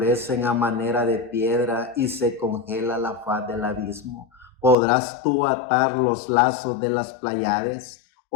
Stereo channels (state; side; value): drops out; right; at 4.8 s